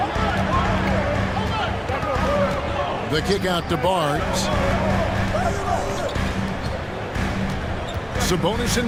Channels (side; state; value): both; identical; correlation 1.00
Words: The kick out to Barnes. Sabonis